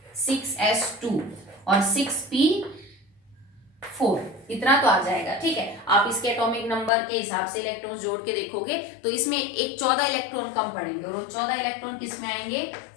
6s2 और 6p4, इतना तो आ जाएगा, ठीक है। आप इसके एटॉमिक नंबर के हिसाब से इलेक्ट्रॉन्स जोड़ के देखोगे तो इसमें एक 14 इलेक्ट्रॉन कम पड़ेंगे और वो 14 इलेक्ट्रॉन किस में आएंगे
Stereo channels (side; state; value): right; drops out; at 6.9 s